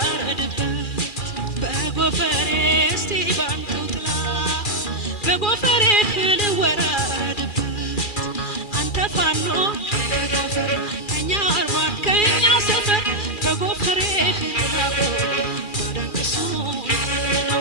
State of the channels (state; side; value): late; right; 2.4 ms